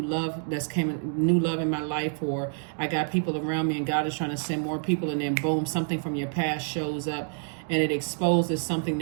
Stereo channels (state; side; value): silent; left; 60 dB below the other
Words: love new love in my life, or I got people around me and God is trying to send more people, and then boom, something from your past shows up and it exposes something